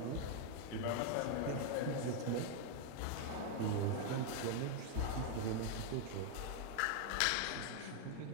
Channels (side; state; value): both; different; correlation 0.01